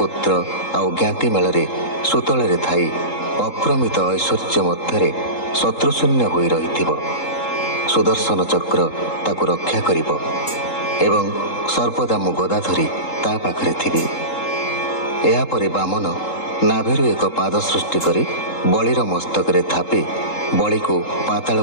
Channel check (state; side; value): late; right; 3.7 ms